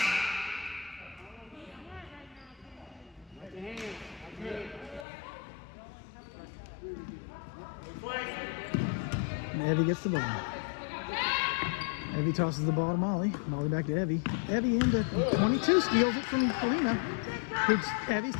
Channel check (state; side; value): drops out; right; at 5.1 s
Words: And Evie gets the ball. Evie tosses the ball to Molly. Molly back to Evie. Evie into 22, steals it from Kalina. Evie